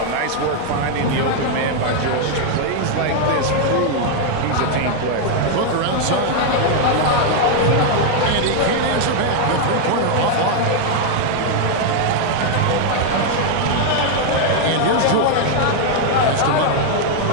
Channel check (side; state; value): both; different; correlation 0.00